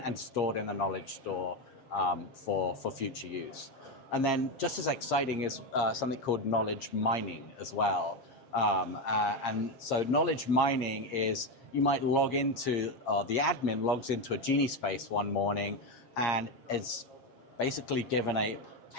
stored in the knowledge store for future use. And then just as exciting is something called knowledge mining as well. And so knowledge mining is you might log into, or the admin logs into a Genie space one morning and is basically given a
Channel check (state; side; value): late; right; 7.4 ms